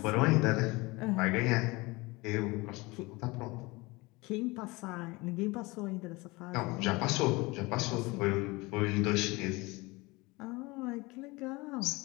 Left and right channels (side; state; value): right; quieter; 23.6 dB